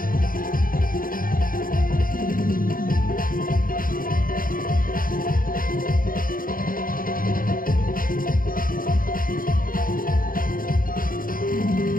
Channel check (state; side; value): late; right; 0.41 ms